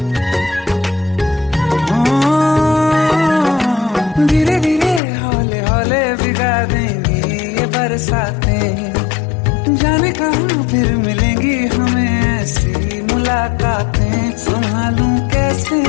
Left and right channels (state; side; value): drops out; right; at 5.0 s